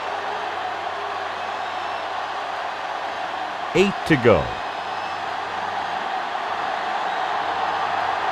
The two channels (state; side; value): identical; both; correlation 1.00